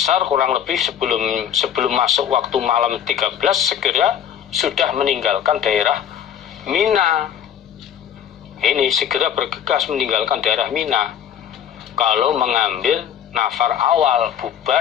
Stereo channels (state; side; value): quieter; right; 9.2 dB